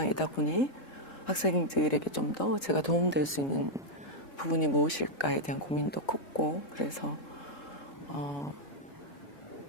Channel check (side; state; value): right; late; 3.7 ms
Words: 보니 학생들에게 좀 더 제가 도움될 수 있는 부분이 무엇일까에 대한 고민도 컸고, 그래서